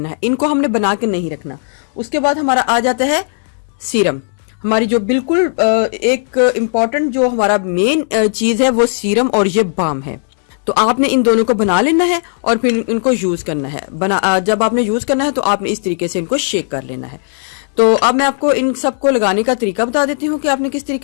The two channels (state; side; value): silent; right; digital silence